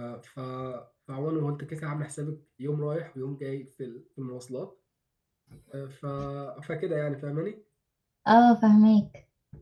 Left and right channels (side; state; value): both; identical; correlation 1.00